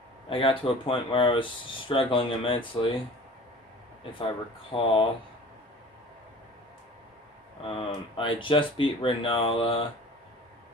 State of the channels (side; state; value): both; normal; correlation 0.42